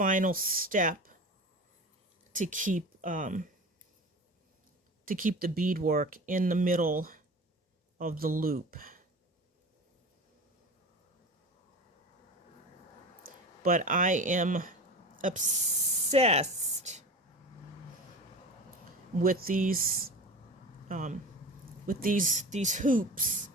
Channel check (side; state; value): both; normal; correlation 0.33